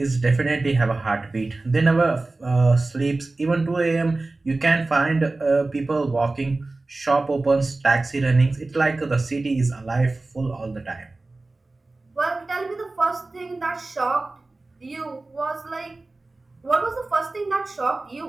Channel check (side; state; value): left; quieter; 3.2 dB